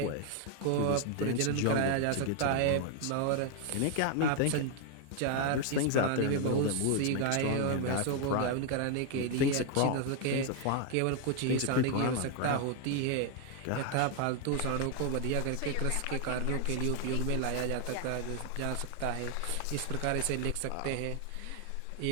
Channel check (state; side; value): different; both; correlation 0.00